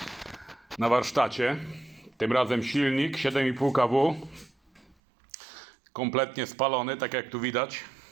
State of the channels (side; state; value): left; drops out; at 5.0 s